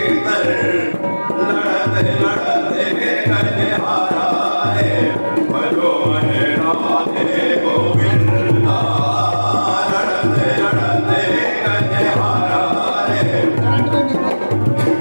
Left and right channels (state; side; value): inverted; both; correlation -1.00